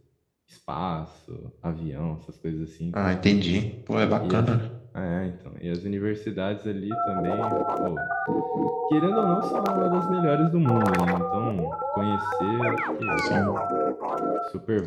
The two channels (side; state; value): both; identical; correlation 1.00